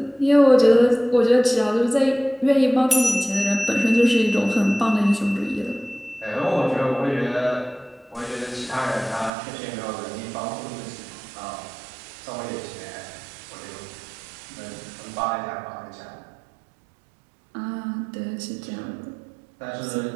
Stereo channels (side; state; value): left; drops out; at 9.3 s